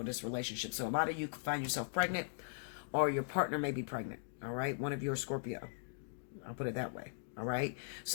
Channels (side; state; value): right; silent; digital silence